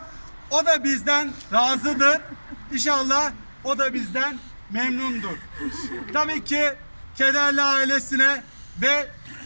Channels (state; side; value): inverted; both; correlation -1.00